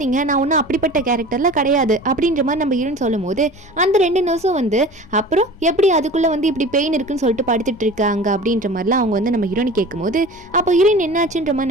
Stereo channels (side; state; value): left; noise; hum, 29 dB below the sound